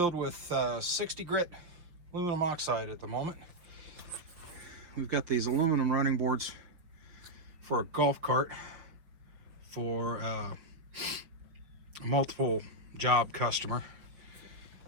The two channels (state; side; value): late; left; 5.8 ms